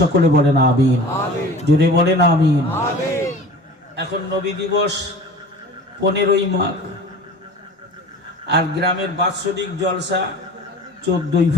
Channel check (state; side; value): normal; both; correlation 0.40